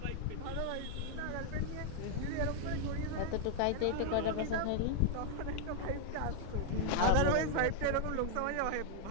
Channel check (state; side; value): different; both; correlation 0.00